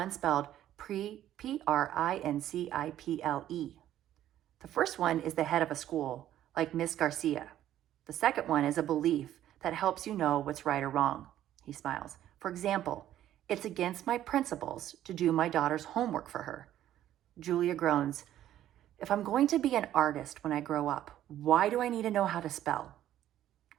spelled Principle? The first one is the head of a school, like Miss Garcia. The second one is a belief that helps you know what's right or wrong. He smiles. For example, it's against my principles to do my daughter's homework for her. Julia groans. If I'm going to be an artist when I grow up, why do I need to know how to spell?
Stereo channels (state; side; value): quieter; left; 12.2 dB